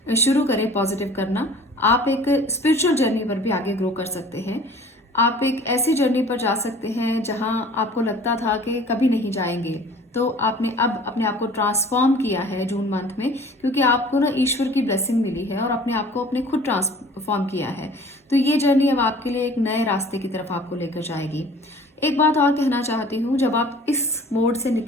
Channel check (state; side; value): normal; both; correlation 0.47